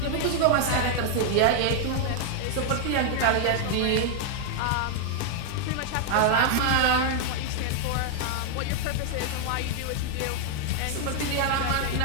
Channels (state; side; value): different; both; correlation 0.00